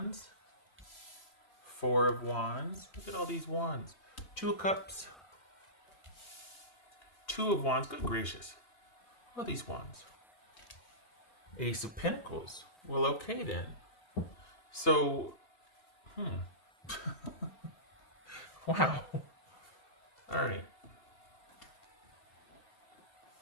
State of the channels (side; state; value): right; late; 2.8 ms